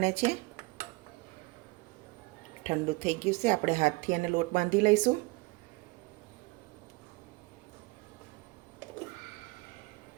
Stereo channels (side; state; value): left; quieter; 24.2 dB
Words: છે। ઠંડુ થઈ ગયું છે, આપણે હાથથી એને લોટ બાંધી લઈશું।